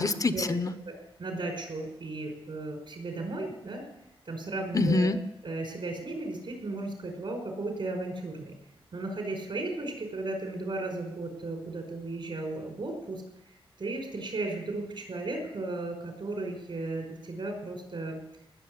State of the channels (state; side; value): normal; both; correlation 0.71